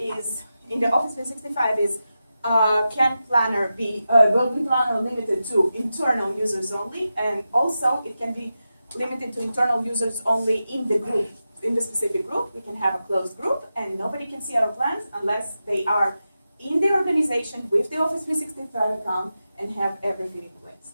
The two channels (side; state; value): both; inverted; correlation -0.91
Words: in the Office 365 is can planner be will be planner limited to internal users only, and also it can be limited to internal users only in the group, in the specific group. We can have a closed group, and nobody can see our plans unless they are in the organization with the Office 365 account and have everything in